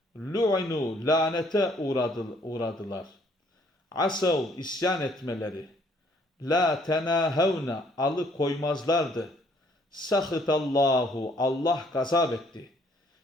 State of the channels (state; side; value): normal; both; correlation 0.64